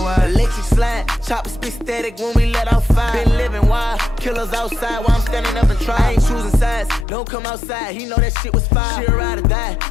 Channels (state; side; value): drops out; right; at 7.1 s